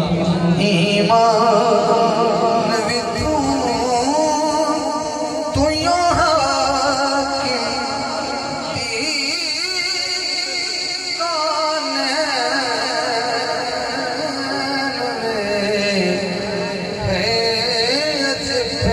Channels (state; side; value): identical; both; correlation 1.00